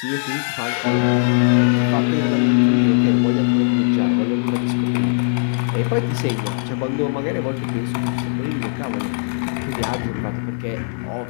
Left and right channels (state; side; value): silent; right; 55 dB below the other